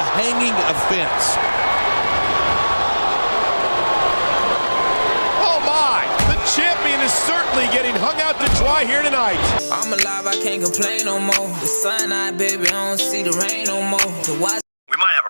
hanging offense. Oh my, the champion is certainly getting hung out to dry here tonight. I'm alive, I can't complain no more. The sun out, baby, I don't see the rain no more. We might have a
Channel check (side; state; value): both; inverted; correlation -1.00